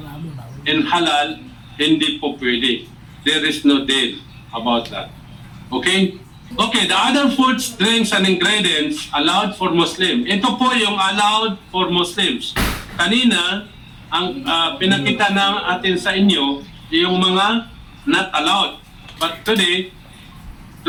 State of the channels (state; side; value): identical; both; correlation 1.00